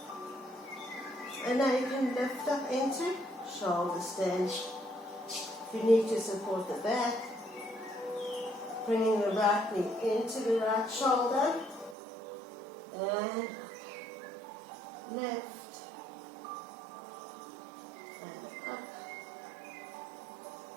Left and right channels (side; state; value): left; drops out; at 12.0 s